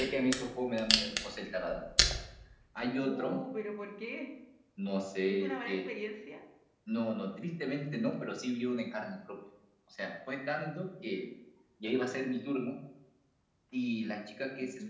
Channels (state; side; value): identical; both; correlation 1.00